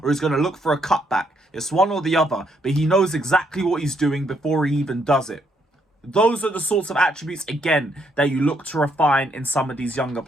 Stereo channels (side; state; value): both; normal; correlation 0.73